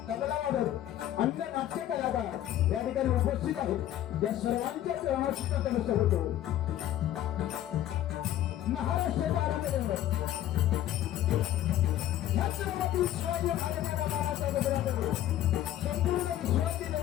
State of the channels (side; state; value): right; quieter; 12.5 dB